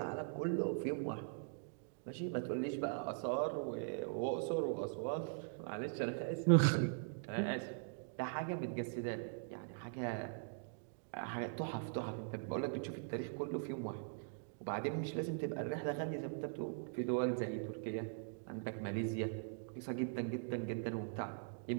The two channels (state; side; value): silent; left; digital silence